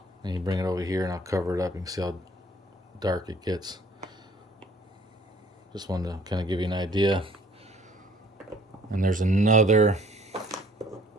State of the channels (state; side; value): normal; both; correlation 0.57